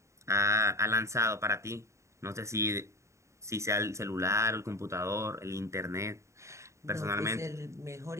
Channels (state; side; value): late; left; 0.14 ms